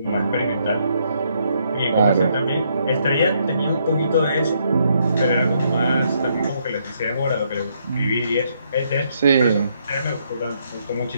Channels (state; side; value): inverted; both; correlation -0.73